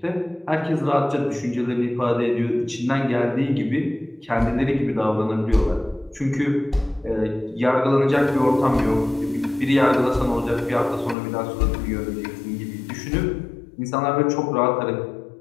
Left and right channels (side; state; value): right; drops out; at 11.2 s